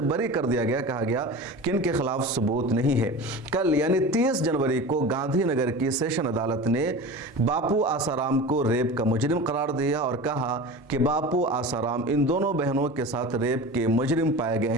बरी कर दिया गया, कहा गया कि इनके खिलाफ सबूत नहीं है। कल यानी 30 जनवरी को गांधीनगर की सेशन अदालत ने बापू आसाराम को रेप का मुजरिम करार दिया और कहा कि बापू आसाराम इन दोनों बहनों के साथ रेप के मुजरिम पाए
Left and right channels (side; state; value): both; normal; correlation 0.33